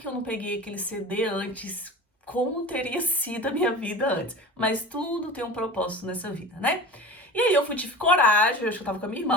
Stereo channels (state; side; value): normal; both; correlation 0.34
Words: eu não peguei aquele CD antes? Como teria sido a minha vida antes? Mas tudo tem um propósito nessa vida, né? E aí eu tive coragem, eu acho que eu tava com a minha